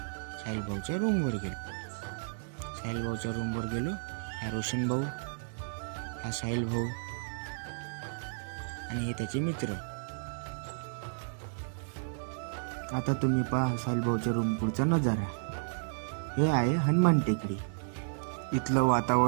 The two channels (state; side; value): silent; left; digital silence